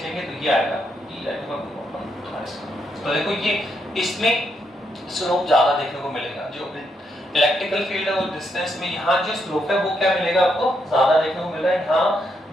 तो ये आएगा e अपॉन r। तो देखो ये इसमें स्लोप ज्यादा देखने को मिलेगा, जो इलेक्ट्रिकल फील्ड है वो डिस्टेंस में यहाँ जो स्लोप है वो क्या मिलेगा आपको? ज्यादा देखने को मिल रहा है।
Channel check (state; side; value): normal; both; correlation 0.78